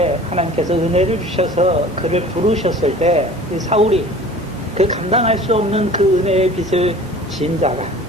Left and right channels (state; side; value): normal; both; correlation 0.44